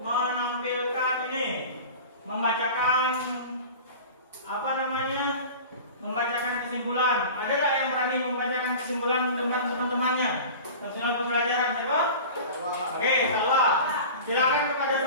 menampilkan ini, membacakan apa namanya? Membacakan kesimpulan. Ada nggak yang berani membacakan kesimpulan dengan teman-temannya? Kesimpulan pembelajaran, siapa? Oke, Salwa. Silakan kepada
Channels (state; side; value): inverted; both; correlation -0.36